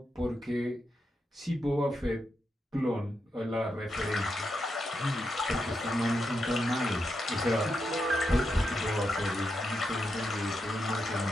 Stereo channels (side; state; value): both; normal; correlation 0.85